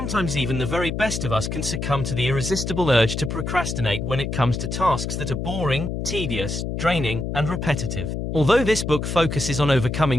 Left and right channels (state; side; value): noise; left; hum, 3 dB below the sound